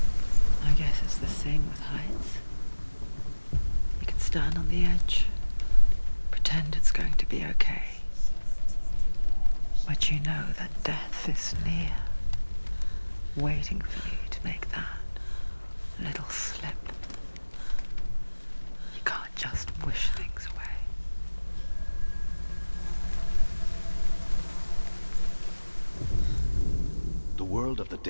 I guess it's the same with heights. You can stand on the edge. Pretend it's going to be okay. But you know that death is near, waiting for you to make that little slip. You can't just wish things away. The world of the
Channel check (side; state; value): both; inverted; correlation -1.00